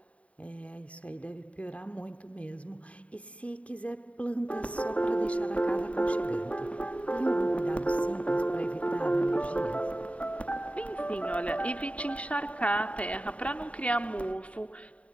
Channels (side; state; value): right; late; 0.065 ms